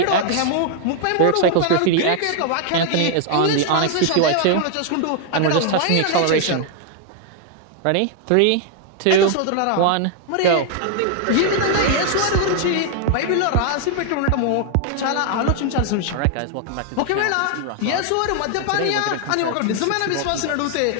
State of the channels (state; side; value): different; both; correlation 0.00